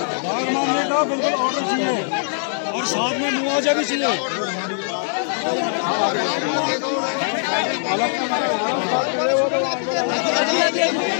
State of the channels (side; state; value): right; silent; 65 dB below the other